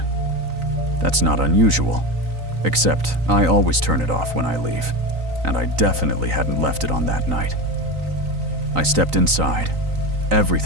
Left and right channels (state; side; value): late; left; 3.9 ms